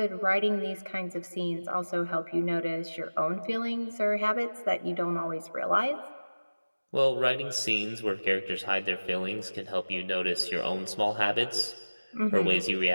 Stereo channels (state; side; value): inverted; both; correlation -1.00